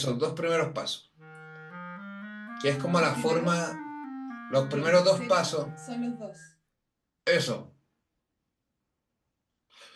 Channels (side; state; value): both; identical; correlation 1.00